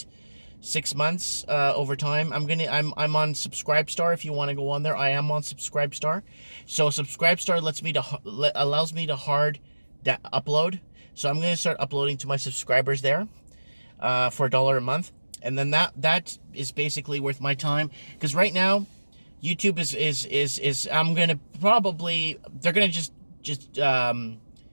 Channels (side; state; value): both; inverted; correlation -1.00